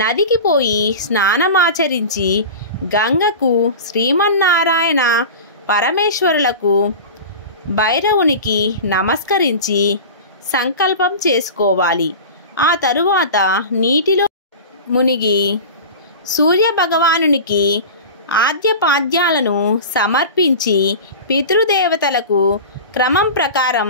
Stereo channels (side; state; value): both; inverted; correlation -0.32